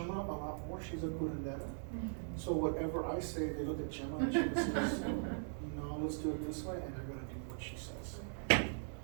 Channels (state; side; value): silent; left; digital silence